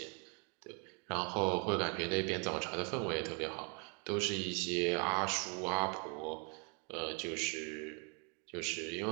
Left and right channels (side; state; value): left; quieter; 35.2 dB